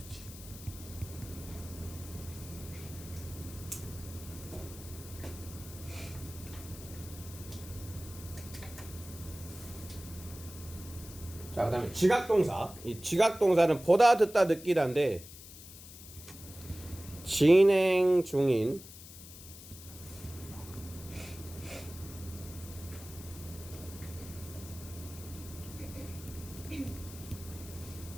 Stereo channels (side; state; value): left; noise; hiss, 16 dB below the sound